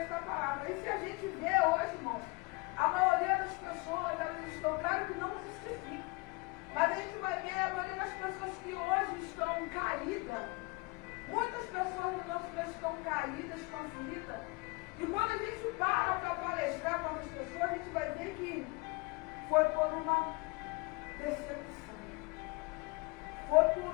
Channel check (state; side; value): quieter; right; 26.4 dB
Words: palavra. E se a gente vê hoje, irmãos, a maioria das pessoas, elas estão, claro que não justifica, mas a gente vai ver a maioria das pessoas que hoje estão caídas. Muitas pessoas no nosso meio estão caídas, estão feridas. E quando a gente para palestrar com essas pessoas, a gente vai ver que foi por uma decepção, foi